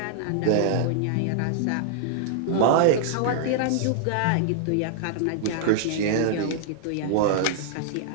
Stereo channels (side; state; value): both; different; correlation -0.01